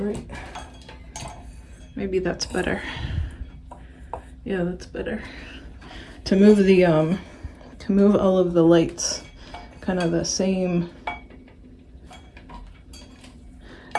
right. Maybe that's better. Yeah, that's better. To move the, to move all of the lights kind of the same.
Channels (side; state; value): both; identical; correlation 1.00